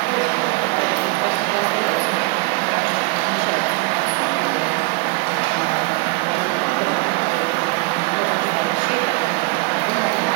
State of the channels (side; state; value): left; quieter; 24.1 dB